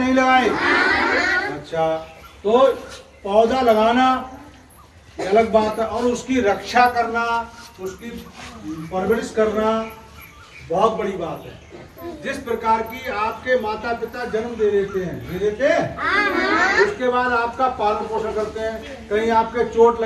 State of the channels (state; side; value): identical; both; correlation 1.00